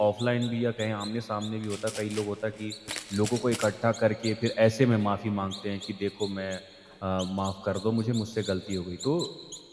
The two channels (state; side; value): identical; both; correlation 1.00